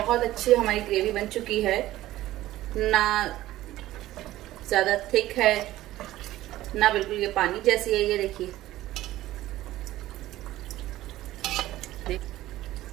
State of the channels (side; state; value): left; quieter; 15.4 dB